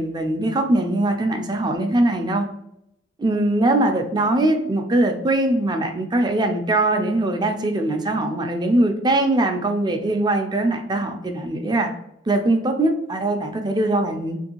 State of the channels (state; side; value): normal; both; correlation 0.58